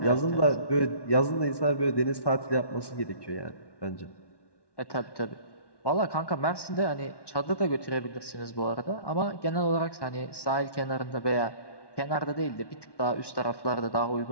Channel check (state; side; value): late; right; 1.1 ms